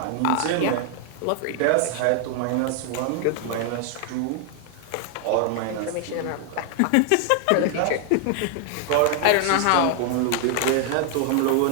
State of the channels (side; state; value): both; different; correlation 0.00